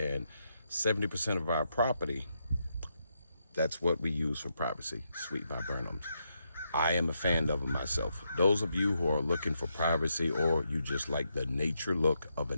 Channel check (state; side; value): inverted; both; correlation -0.81